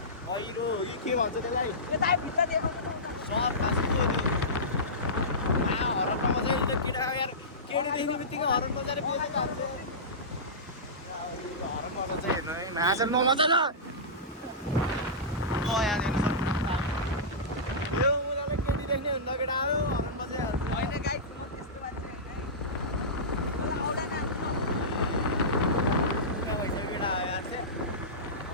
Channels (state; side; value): normal; both; correlation -0.18